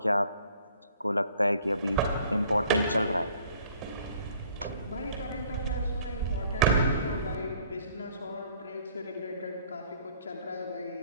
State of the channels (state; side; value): inverted; both; correlation -0.58